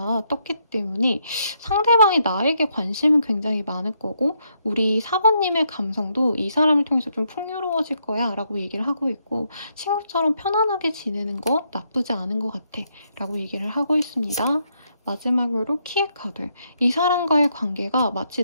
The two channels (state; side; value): inverted; both; correlation -0.76